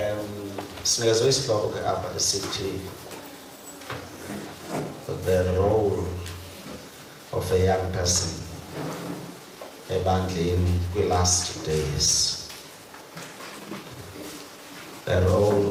Sinikezwe isihloko apha esithi the role of a young person ebandleni kwi-last days. The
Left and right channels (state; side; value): identical; both; correlation 1.00